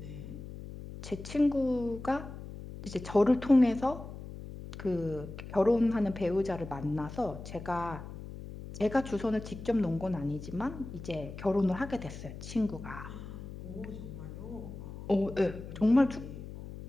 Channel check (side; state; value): left; noise; hum, 11 dB below the sound